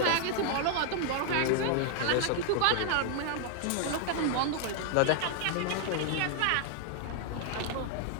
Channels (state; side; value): different; both; correlation 0.00